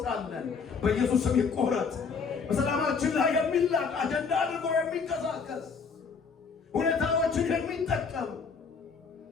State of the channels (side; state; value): right; quieter; 5.4 dB